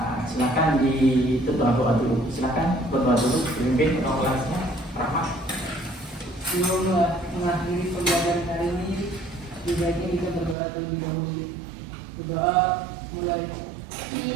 silakan berdoa dulu. Silakan berdoa dulu, pimpin ketua kelasnya, Rahmat. Sebelum mengakhiri pembelajaran hari ini, sebaiknya kita berdoa terlebih dahulu. Berdoa mulai.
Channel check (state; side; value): drops out; left; at 10.6 s